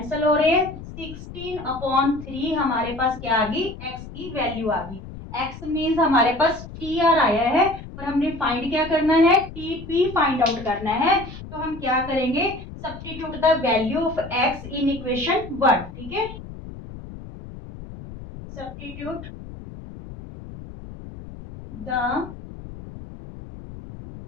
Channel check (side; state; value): left; noise; rumble, 13 dB below the sound